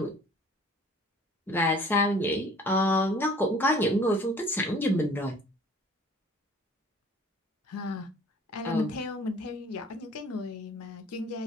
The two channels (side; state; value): both; normal; correlation 0.51